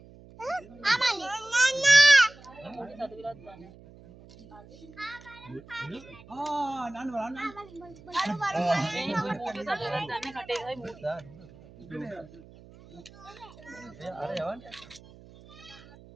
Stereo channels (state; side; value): noise; right; hum, 21 dB below the sound